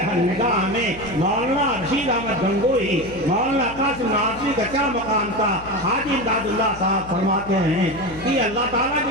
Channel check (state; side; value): noise; left; hum, 17 dB below the sound